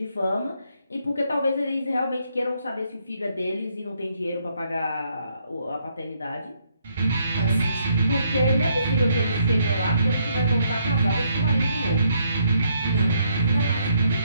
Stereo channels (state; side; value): inverted; both; correlation -0.72